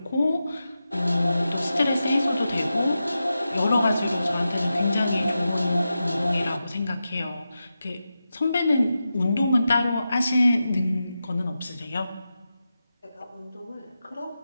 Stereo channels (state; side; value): inverted; both; correlation -0.91